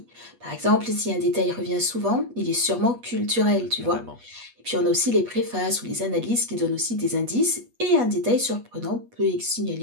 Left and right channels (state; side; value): late; left; 8.3 ms